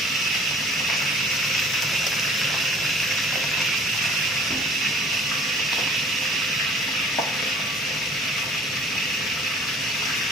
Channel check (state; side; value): normal; both; correlation 0.52